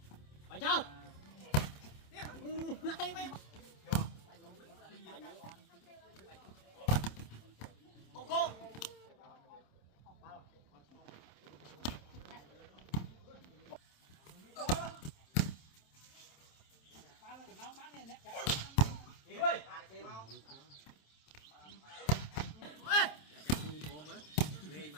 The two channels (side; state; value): right; late; 27 ms